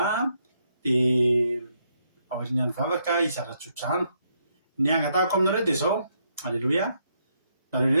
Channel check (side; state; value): both; inverted; correlation -0.75